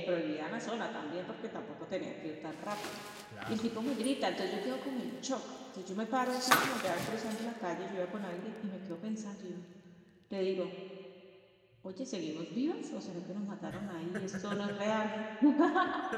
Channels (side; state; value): both; identical; correlation 1.00